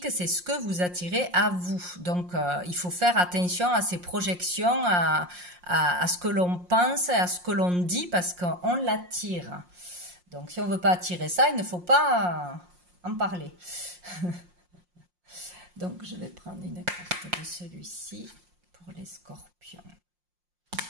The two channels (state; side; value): late; left; 5.6 ms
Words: c'est ce que vous attirez à vous. Donc, il faut faire attention à ces projections, à ce que l'on pense, à ce que l'on dit, parce qu'on l'attire. Donc, si on ne veut pas attirer ça, il ne faut pas en parler. Donc, je vais prendre une carte de celui-ci pour les scorpions.